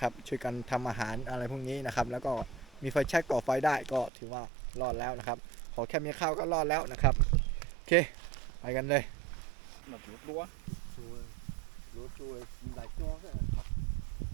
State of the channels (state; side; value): drops out; left; at 4.1 s